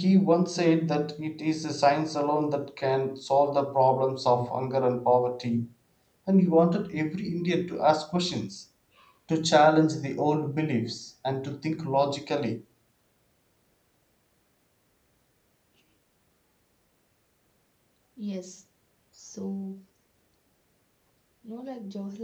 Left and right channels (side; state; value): both; identical; correlation 1.00